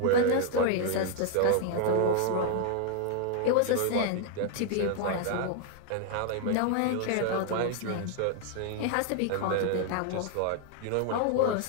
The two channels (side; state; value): both; different; correlation 0.00